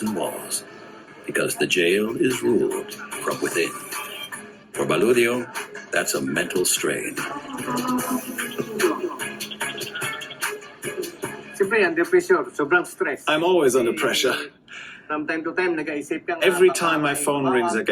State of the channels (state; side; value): identical; both; correlation 1.00